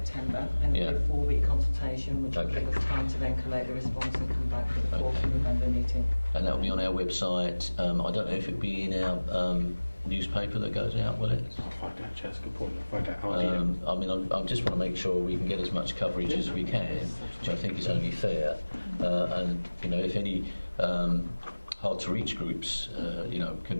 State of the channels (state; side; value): inverted; both; correlation -1.00